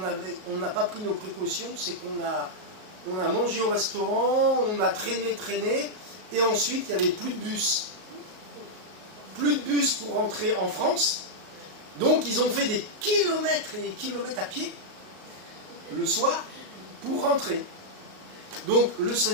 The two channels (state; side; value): late; left; 38 ms